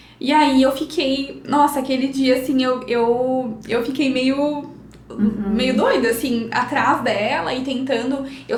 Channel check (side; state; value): both; identical; correlation 1.00